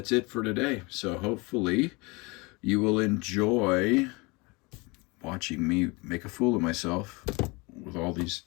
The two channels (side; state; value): right; quieter; 26.6 dB